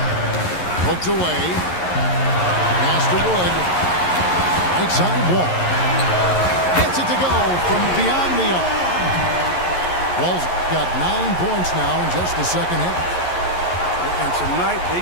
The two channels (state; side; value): late; right; 11 ms